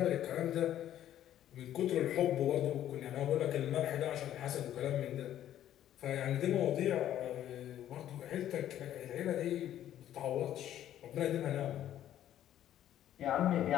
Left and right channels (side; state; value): right; quieter; 11.6 dB